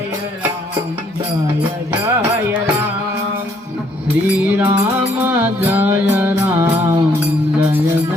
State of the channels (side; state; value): both; normal; correlation 0.67